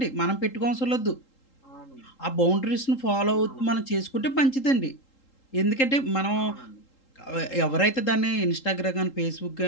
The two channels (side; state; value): right; late; 3.8 ms